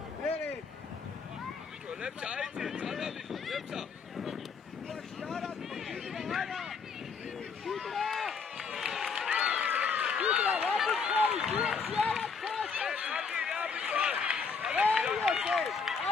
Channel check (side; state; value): right; quieter; 5.4 dB